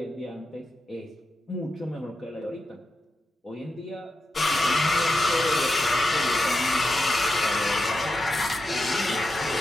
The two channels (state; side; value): normal; both; correlation 0.88